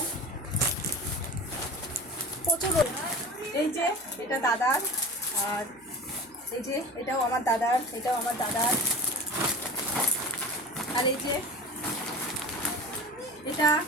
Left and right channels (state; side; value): noise; right; hum, 30 dB below the sound